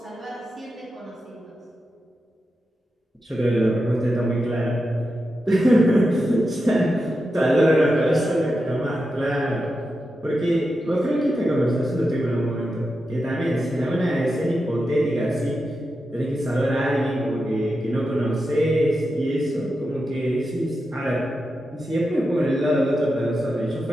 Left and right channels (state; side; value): normal; both; correlation 0.89